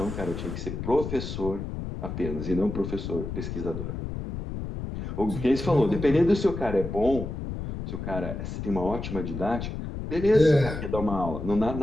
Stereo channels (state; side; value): noise; left; rumble, 6 dB below the sound